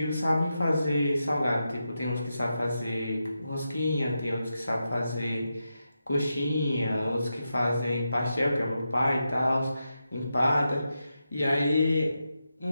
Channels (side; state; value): both; inverted; correlation -0.88